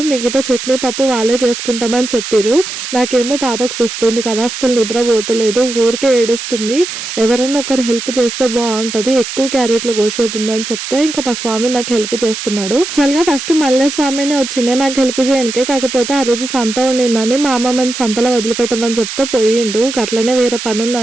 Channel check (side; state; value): right; noise; hiss, 7 dB below the sound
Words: మిగతా చట్నీ పప్పు వాళ్ళే చేసుకుంటామని చెప్పారు. నాకేమో పాపకు వస్తుంది కదా, అస్సలు నిద్రపోతలేదు, ఊరికే ఏడుస్తుంది. ఎవరైనా ఒకరు హెల్ప్ చేస్తే బాగుంటుంది, ఎక్కువ క్యారెట్లు కోసేతుందని చెప్తే ఇంకా మా స్వామి నాకు హెల్ప్ చేస్తున్నాడు. చల్లగా ఫస్ట్ మల్లె స్వామినే వచ్చిండే నాకు హెల్ప్ చేయడానికి. కాకపోతే ఆ రోజు సంత ఉండిందని మా అమ్మమ్మని సంతలో వదిలిపెట్టమని చెప్తే పోయిండు. అట్లనే వేరే పని